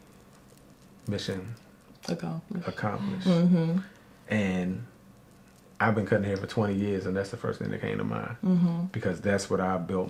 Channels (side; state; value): both; identical; correlation 1.00